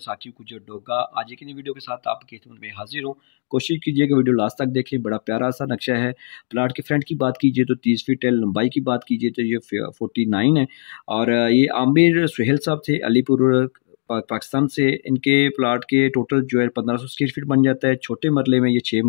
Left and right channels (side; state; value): right; silent; digital silence